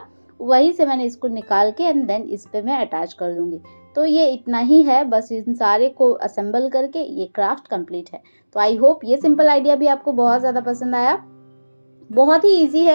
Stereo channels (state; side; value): inverted; both; correlation -1.00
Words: वहीं से मैंने इसको निकाल के एंड देन इस पे मैं अटैच कर दूँगी। तो ये इतना ही है, बस इन सारे को असेंबल करके ये क्राफ्ट कंप्लीट है। तो आई होप ये सिंपल आइडिया भी आपको बहुत ज़्यादा पसंद आया। बहुत ही ईजी